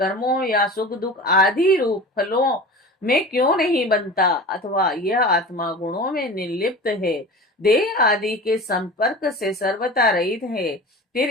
या सुख दुख आदि रूप फलों में क्यों नहीं बनता, अथवा यह आत्मा गुणों में निर्लिप्त है देह आदि के संपर्क से सर्वथा रहित है, फिर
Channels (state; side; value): normal; both; correlation 0.35